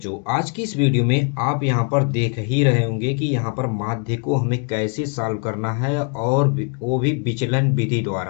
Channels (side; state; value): right; quieter; 39.2 dB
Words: आज की इस वीडियो में आप यहाँ पर देख ही रहे होंगे कि यहाँ पर माध्य को हमें कैसे सॉल्व करना है और वो भी विचलन विधि